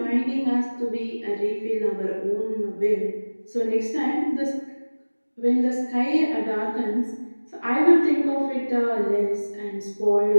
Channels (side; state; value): both; inverted; correlation -1.00